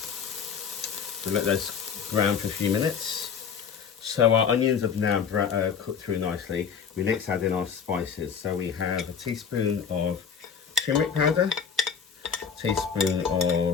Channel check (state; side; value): quieter; right; 6.7 dB